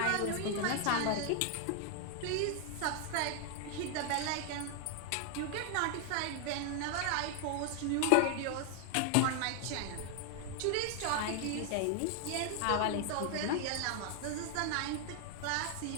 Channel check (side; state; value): both; different; correlation 0.00